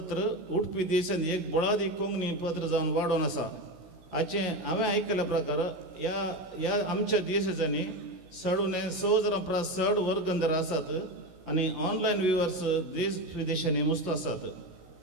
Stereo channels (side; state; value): left; late; 16 ms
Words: उडपी देशांत एक बळादी कोंकणी पत्र जावन वाडोवन आसा. हांवें आयकल्या प्रकार ह्या आमच्या देशाच्यांनी सडूने सहज चड वर्गंधर आसात आनी ऑनलायन व्ह्युअर्स देश विदेशांनी मस्त आसात.